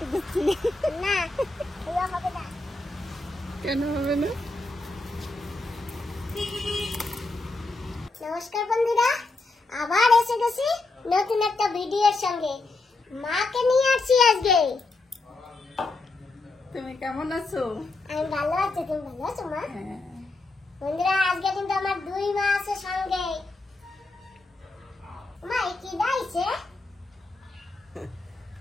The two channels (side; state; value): right; quieter; 3.2 dB